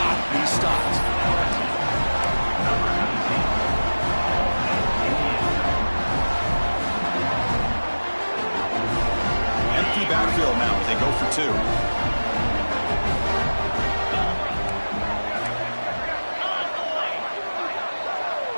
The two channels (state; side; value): inverted; both; correlation -1.00